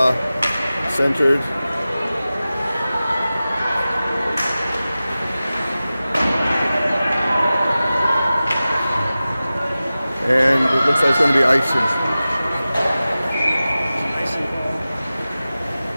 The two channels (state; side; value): inverted; both; correlation -0.96